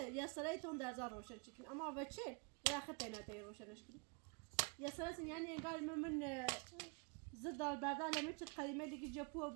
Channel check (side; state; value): left; quieter; 34.6 dB